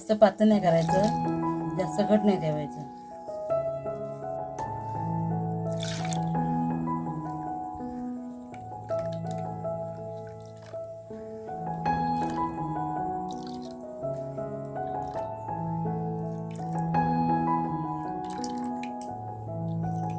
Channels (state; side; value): identical; both; correlation 1.00